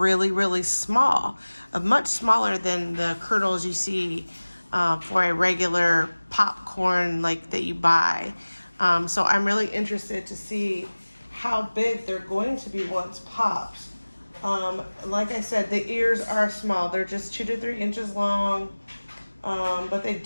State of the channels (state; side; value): inverted; both; correlation -1.00